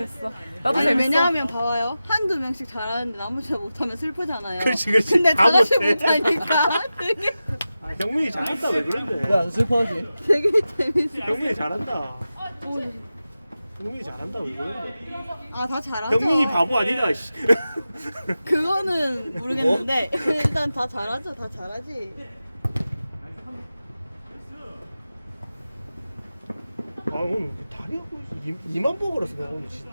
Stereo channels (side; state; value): both; inverted; correlation -0.94